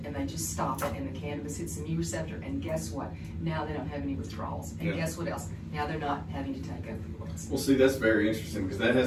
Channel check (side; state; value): both; identical; correlation 1.00